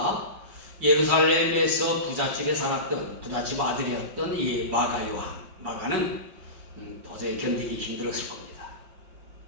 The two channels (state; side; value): late; left; 5.8 ms